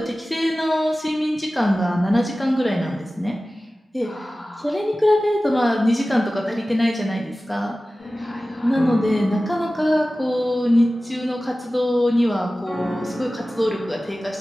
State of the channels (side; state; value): both; normal; correlation 0.96